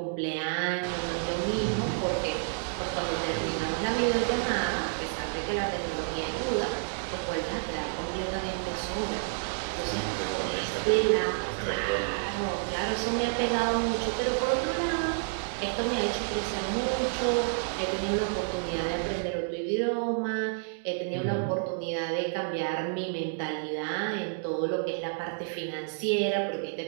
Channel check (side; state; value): left; silent; digital silence